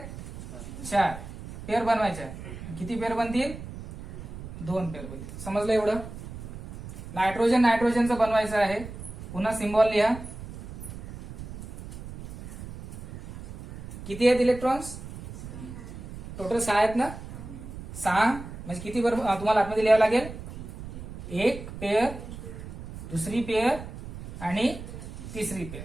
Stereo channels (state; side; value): noise; right; rumble, 12 dB below the sound